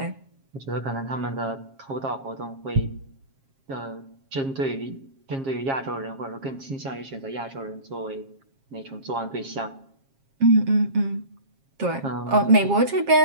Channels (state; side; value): late; left; 7.4 ms